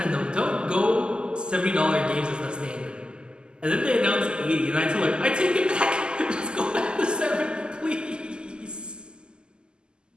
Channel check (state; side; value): late; left; 0.047 ms